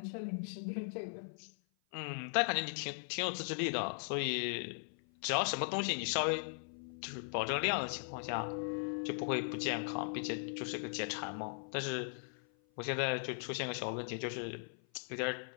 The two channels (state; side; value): silent; right; 52 dB below the other